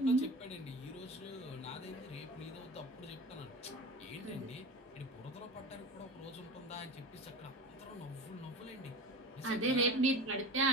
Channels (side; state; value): both; normal; correlation 0.31